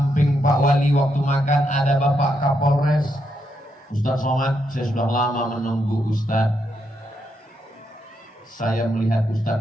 Pak Wali waktu makan ada Bapak Kapolres Ustadz Somad. Saya sudah lama menunggu Ustadz. Saya melihat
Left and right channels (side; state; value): both; normal; correlation 0.80